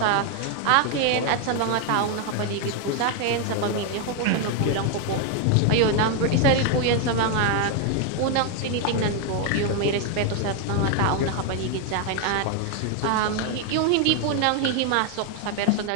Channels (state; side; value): different; both; correlation 0.01